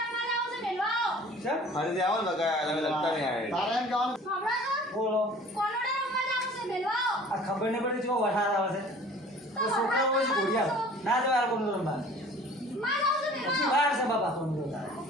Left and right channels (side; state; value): both; normal; correlation 0.48